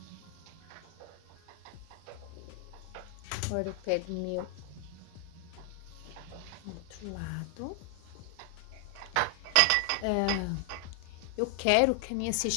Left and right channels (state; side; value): different; both; correlation 0.00